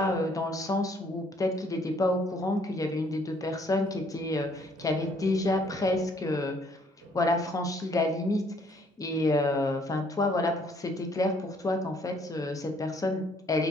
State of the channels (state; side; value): normal; both; correlation 0.64